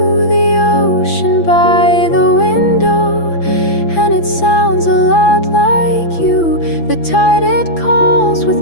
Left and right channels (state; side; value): late; right; 6.0 ms